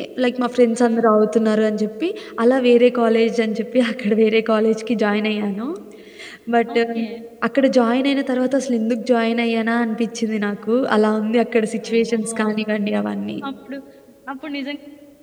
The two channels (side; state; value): both; identical; correlation 1.00